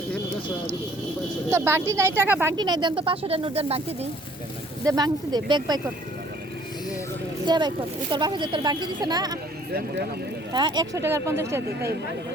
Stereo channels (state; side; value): normal; both; correlation 0.58